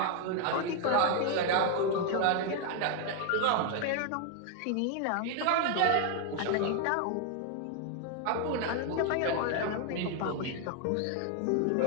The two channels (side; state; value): both; different; correlation 0.01